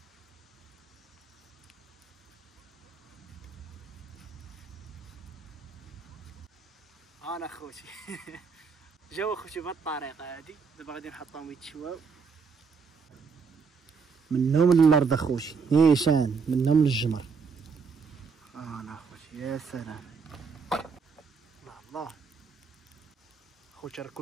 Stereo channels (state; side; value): quieter; left; 5.4 dB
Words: انا خوتي جاو خوتي بهاد الطريقه هادي. دابا غادي نحطهم يتشواو منهم للارض اخوتي نيشان منهم للجمر. انا خوتي يا سلام الله الله خوتي راه